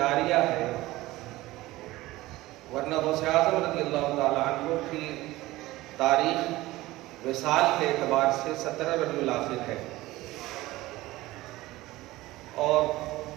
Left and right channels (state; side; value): quieter; left; 18.1 dB